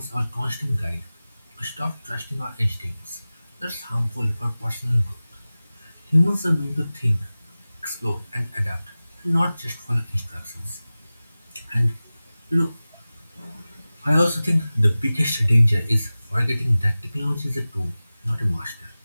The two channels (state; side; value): inverted; both; correlation -0.97